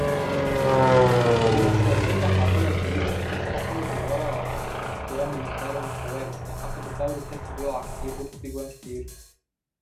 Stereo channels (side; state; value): both; identical; correlation 1.00